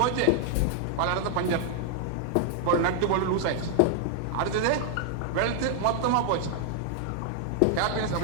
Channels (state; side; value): different; both; correlation 0.00